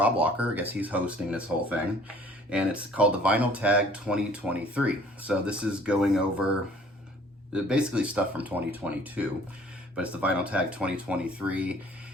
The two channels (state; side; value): normal; both; correlation 0.54